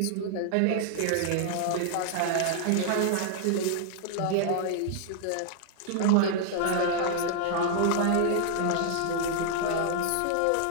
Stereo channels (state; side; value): different; both; correlation -0.01